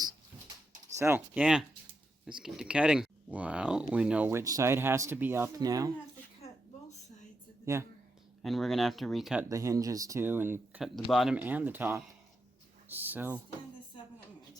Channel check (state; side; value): normal; both; correlation 0.85